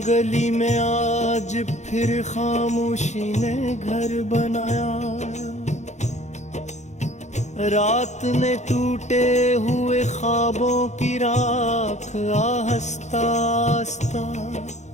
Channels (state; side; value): late; right; 0.34 ms